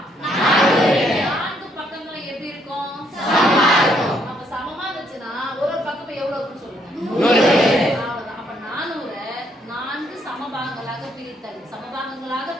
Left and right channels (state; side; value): normal; both; correlation 0.71